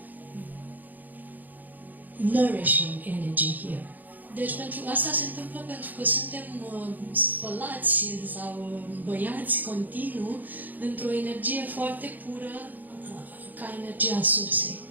nourishing energy here. Deci pentru asta se întâmplă pentru că suntem spălați sau băiați continuu într-o energie foarte pură ca energia sursei.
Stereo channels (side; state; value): left; late; 0.084 ms